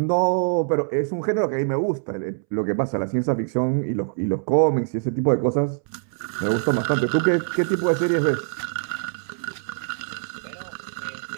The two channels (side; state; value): left; silent; 63 dB below the other